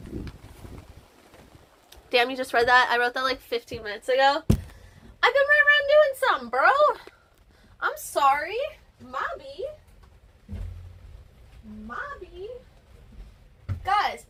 Damn, you just read that? I wrote that like 15 minutes ago. I've been right around doing something, bro. I'm sorry. Mobby. Guys,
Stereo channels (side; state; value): both; identical; correlation 1.00